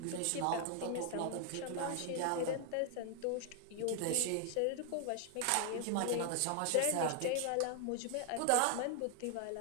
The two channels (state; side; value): different; both; correlation 0.00